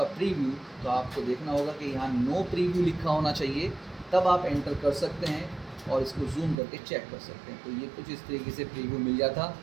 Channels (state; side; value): drops out; left; at 6.6 s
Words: प्रीव्यू तो आपको देखना होगा कि यहाँ नो प्रीव्यू लिखा होना चाहिए, तब आप एंटर कर सकते हैं और इसको जूम करके चेक कर सकते हैं। तो ये कुछ इस तरीके से प्रीव्यू मिल जाता।